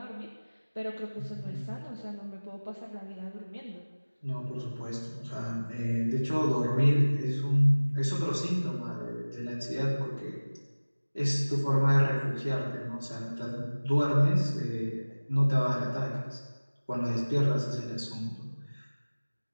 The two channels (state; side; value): inverted; both; correlation -1.00